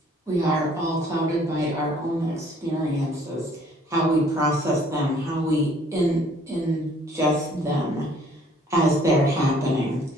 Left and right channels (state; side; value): normal; both; correlation 0.59